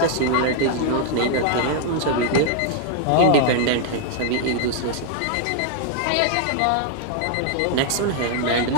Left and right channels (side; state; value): both; different; correlation 0.00